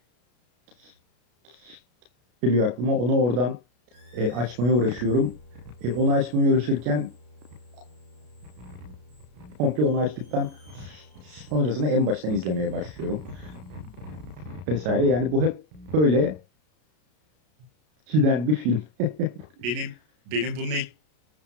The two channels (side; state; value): left; late; 33 ms